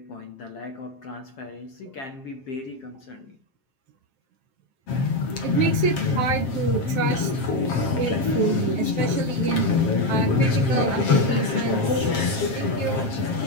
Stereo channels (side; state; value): right; late; 7.5 ms